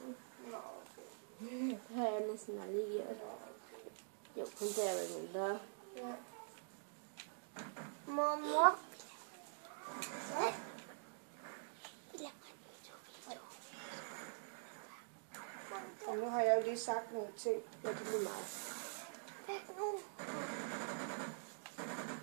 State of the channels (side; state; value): left; silent; digital silence